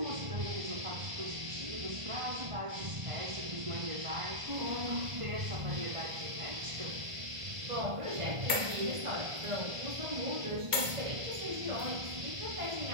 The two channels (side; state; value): left; late; 1.5 ms